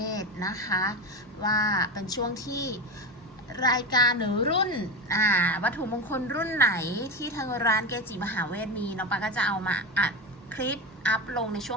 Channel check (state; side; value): normal; both; correlation 0.20